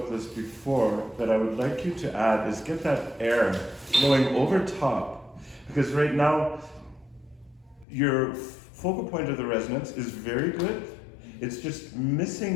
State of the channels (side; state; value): right; drops out; at 7.9 s